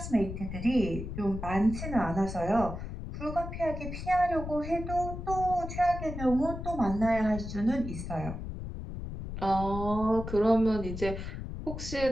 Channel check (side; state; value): left; noise; rumble, 7 dB below the sound